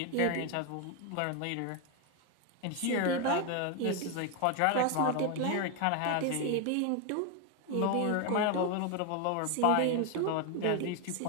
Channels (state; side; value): different; both; correlation 0.01